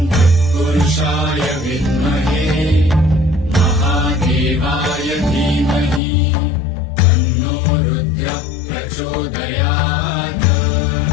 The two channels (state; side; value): drops out; right; at 6.0 s